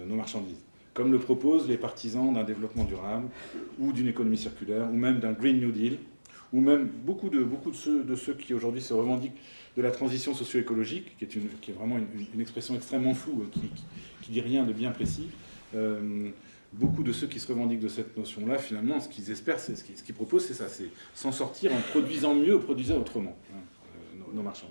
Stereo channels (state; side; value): inverted; both; correlation -1.00